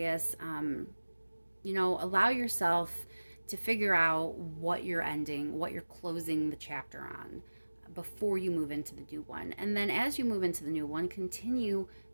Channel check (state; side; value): inverted; both; correlation -1.00